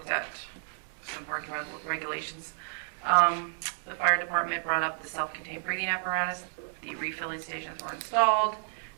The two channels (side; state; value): left; silent; 57 dB below the other